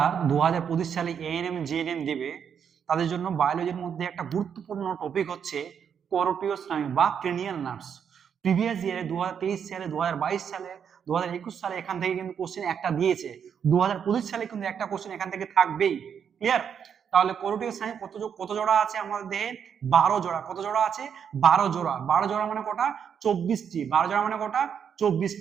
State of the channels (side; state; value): left; quieter; 7.7 dB